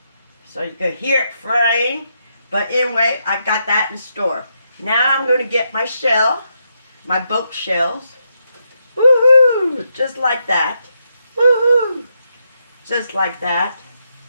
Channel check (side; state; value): both; inverted; correlation -0.81